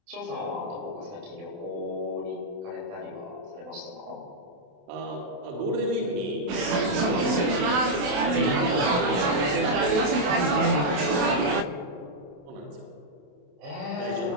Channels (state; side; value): late; left; 28 ms